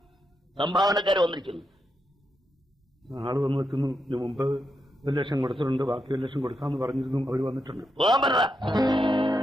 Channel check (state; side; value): normal; both; correlation 0.84